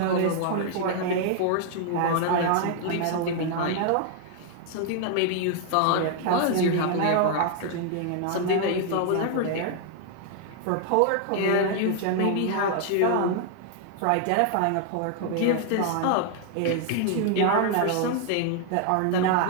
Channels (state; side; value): different; both; correlation 0.00